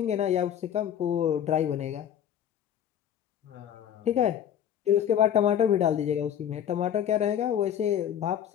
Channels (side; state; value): right; quieter; 9.7 dB